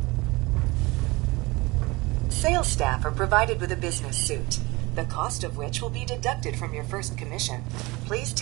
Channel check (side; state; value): left; quieter; 23.3 dB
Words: Sales staff are provided with a business suit, the cost of which will be deducted from your first commission. Please